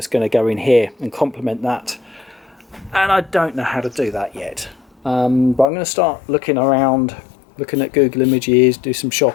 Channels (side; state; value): right; drops out; at 5.7 s